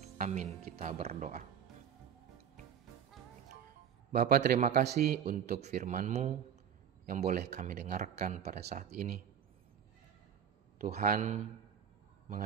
Amin, kita berdoa. Bapa, terima kasih untuk firman-Mu yang boleh kami dengarkan pada saat ini. Tuhan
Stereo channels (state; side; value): quieter; left; 8.5 dB